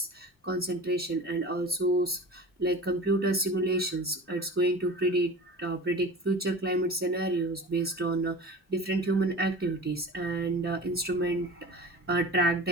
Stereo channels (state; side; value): normal; both; correlation 0.36